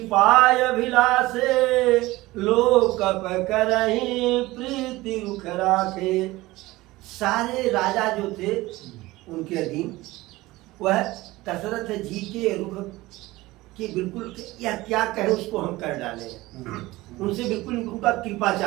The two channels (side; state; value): left; quieter; 19.1 dB